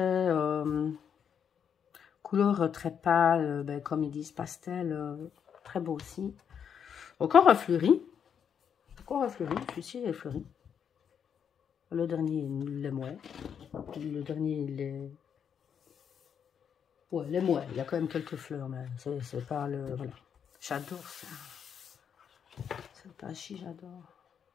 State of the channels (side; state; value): right; quieter; 7.7 dB